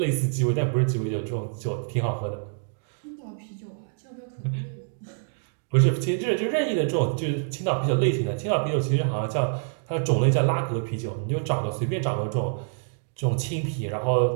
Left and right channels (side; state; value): left; silent; digital silence